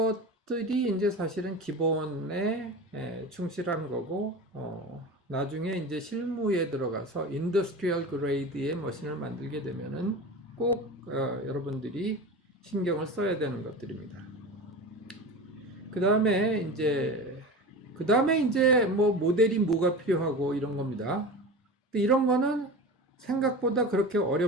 이제 사실은 기본에 충실한 거고, 나중에 이제 실무에 들어가서 인더스트리얼 그레이드의 머신을 만들게 되면은 꼭 여러분들이 신경을 써야 되는 것들입니다. 그 다음에 이제 뭐 모델이 뭐가 필요하고 이런 겁니다. 근데 이런 거는 생각보다 그렇게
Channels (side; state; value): both; normal; correlation 0.30